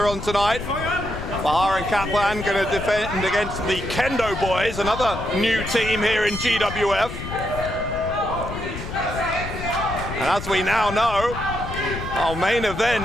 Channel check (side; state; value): left; noise; rumble, 8 dB below the sound